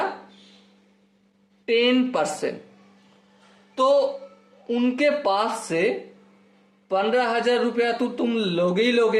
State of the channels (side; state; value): both; identical; correlation 1.00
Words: 10%। तो उनके पास से 15,000 रुपया तो तुम लोगे ही